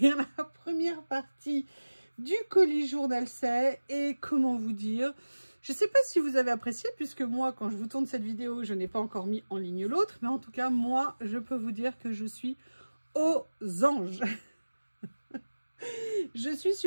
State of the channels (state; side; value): inverted; both; correlation -1.00